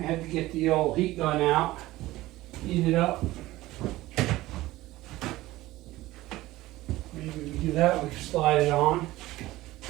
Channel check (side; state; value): left; quieter; 17.4 dB